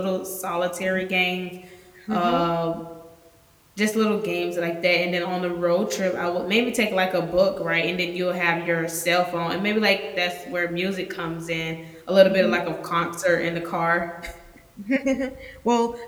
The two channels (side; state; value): both; identical; correlation 1.00